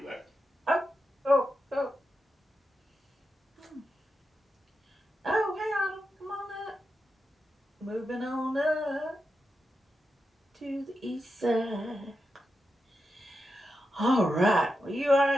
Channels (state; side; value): normal; both; correlation 0.88